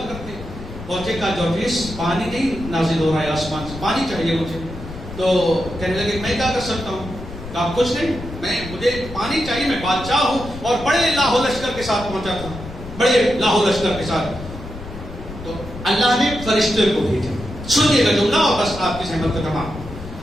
کرتے ہیں۔ پہنچے، کہا جورجیس پانی نہیں نازل ہو رہا ہے آسمان سے، پانی چاہیے مجھے۔ تو کہنے لگے میں کیا کر سکتا ہوں؟ کہا کچھ نہیں، مجھے پانی چاہیے، میں بادشاہ ہوں اور بڑے لاہو لشکر کے ساتھ پہنچا تھا، بڑے لاہو لشکر کے ساتھ۔ تو اللہ نے فرشتے کو بھیجا، سنیے گا جملہ اور بس آپ کی سہمت کا تمام۔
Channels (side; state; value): left; noise; rumble, 12 dB below the sound